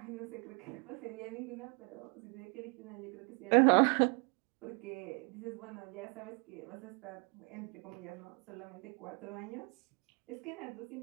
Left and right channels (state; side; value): quieter; left; 35.2 dB